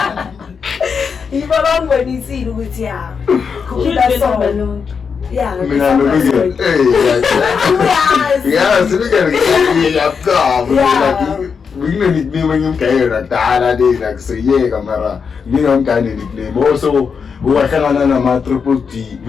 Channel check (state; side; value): quieter; right; 6.0 dB